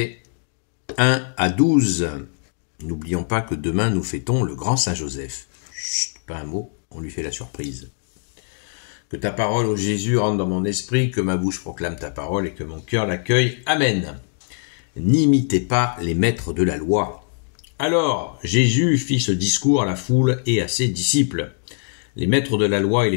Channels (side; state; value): right; silent; digital silence